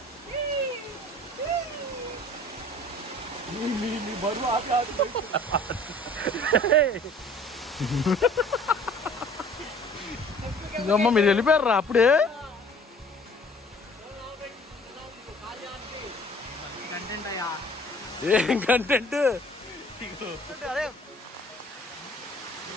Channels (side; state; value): both; normal; correlation 0.51